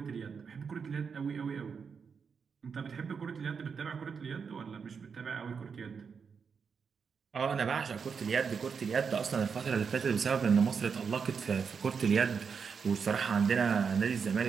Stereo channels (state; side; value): quieter; left; 6.0 dB